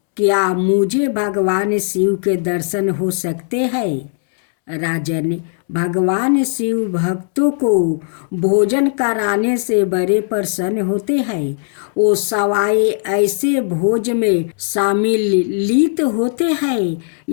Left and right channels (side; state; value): right; silent; 68 dB below the other